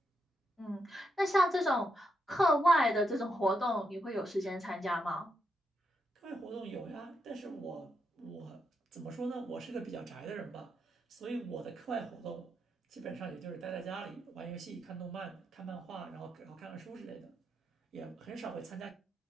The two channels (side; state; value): both; normal; correlation 0.81